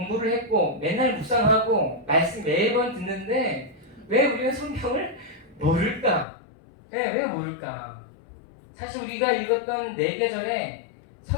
했고 맨날 묵상하고 말씀 매번 듣는데 왜 우리는 성경을 모를까? 왜 모를까? 사실 우리가 읽었던 4계절에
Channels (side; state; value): right; drops out; at 6.2 s